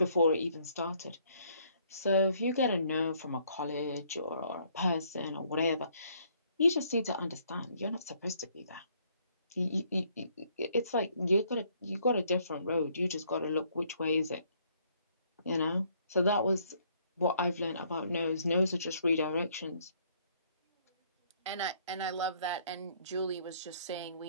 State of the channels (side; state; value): both; inverted; correlation -0.66